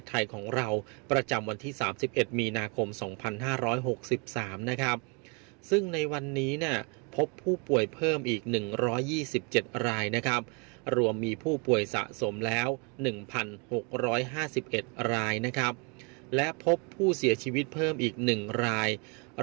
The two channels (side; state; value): left; quieter; 33.3 dB